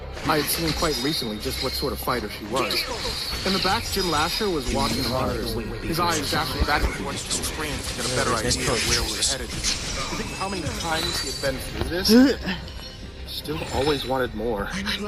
I had seen quite recently just what sort of fighter she was. In the back, Jim Lasher was watching the monitors, his eyes dashing back and forth to the screen to get a better idea of where we were headed. To think how many times he had been through this, still always wanted more.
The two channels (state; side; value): identical; both; correlation 1.00